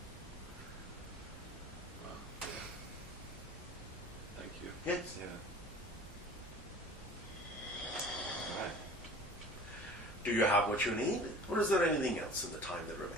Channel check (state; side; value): normal; both; correlation 0.43